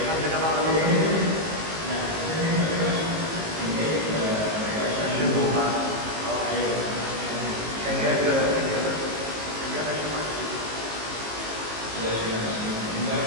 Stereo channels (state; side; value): late; left; 19 ms